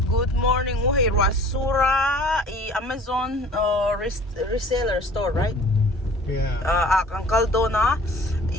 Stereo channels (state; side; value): normal; both; correlation 0.47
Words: Good morning. Hey, Rasura, Amazon reseller store, right? Yeah. Uncle Dona,